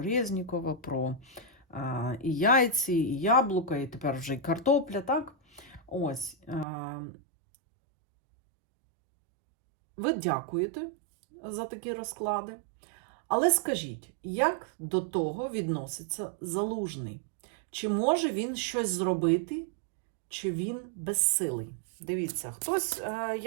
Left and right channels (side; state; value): left; drops out; at 6.7 s